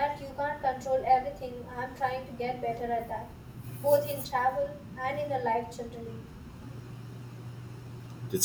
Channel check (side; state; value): both; identical; correlation 1.00